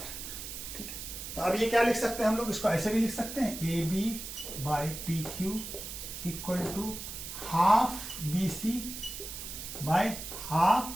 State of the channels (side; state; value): right; noise; hiss, 9 dB below the sound